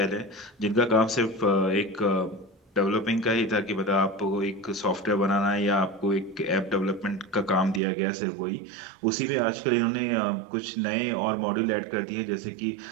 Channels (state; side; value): drops out; left; at 7.8 s